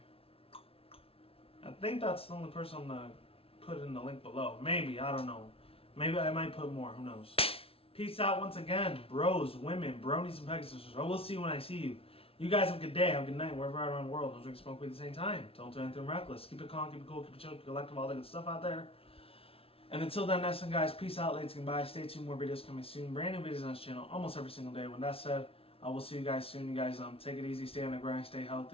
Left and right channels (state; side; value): late; right; 0.27 ms